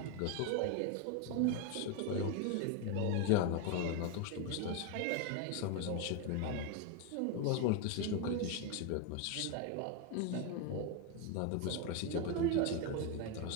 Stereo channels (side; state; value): both; different; correlation 0.02